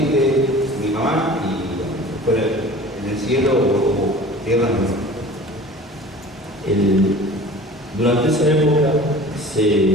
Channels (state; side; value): normal; both; correlation 0.42